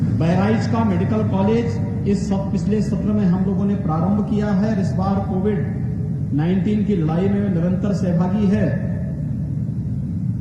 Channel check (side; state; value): both; identical; correlation 1.00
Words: बहराइच का मेडिकल कॉलेज इस पिछले सत्र में हम लोगों ने प्रारंभ किया है। इस बार कोविड-19 की लड़ाई में निरंतर सहभागी है